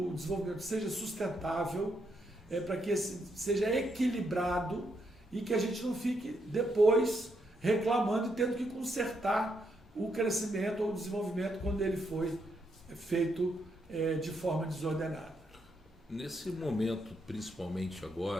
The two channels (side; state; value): both; normal; correlation 0.78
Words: desenvolvimento seja sustentável, para que seja equilibrado e que a gente não fique depois reclamando e tendo que consertar o crescimento ou o desenvolvimento quando ele foi feito de forma desordenada. Nesse momento, principalmente